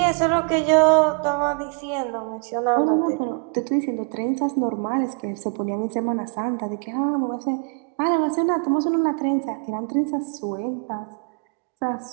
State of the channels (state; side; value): quieter; left; 38.6 dB